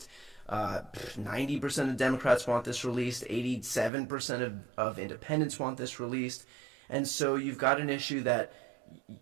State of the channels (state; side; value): drops out; left; at 3.9 s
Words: 90% of Democrats want this released. 87% of independents want this released. And so you've got an issue that